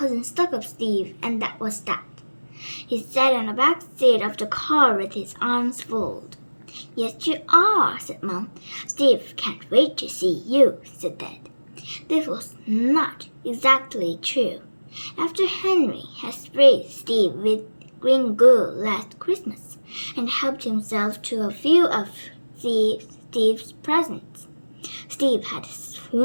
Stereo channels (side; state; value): both; inverted; correlation -1.00